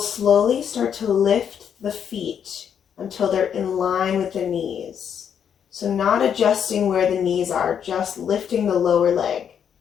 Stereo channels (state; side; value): quieter; right; 8.2 dB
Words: start to lift the feet until they're in line with the knees. So not adjusting where the knees are, just lifting the lower leg.